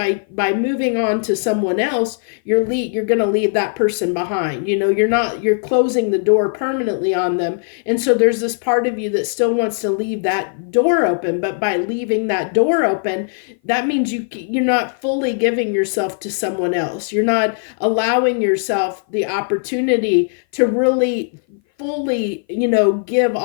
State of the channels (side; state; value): right; silent; 57 dB below the other